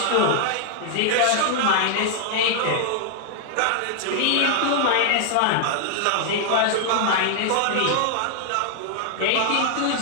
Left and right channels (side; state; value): both; different; correlation 0.00